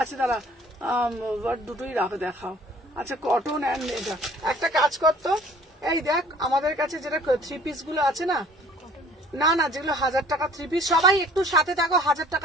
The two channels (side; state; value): both; normal; correlation 0.53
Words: আচ্ছা দাঁড়া, দুটোই রাখো দেখাও। আচ্ছা কটন অ্যান্ড এটা একটা কাজ করতো, এই দেখ আমাদের কাছে যেটা থ্রি পিস গুলো আছে না, না না যেগুলো 1000 টাকা থ্রি পিস, সবাই একটু সাথে থাকো। 1000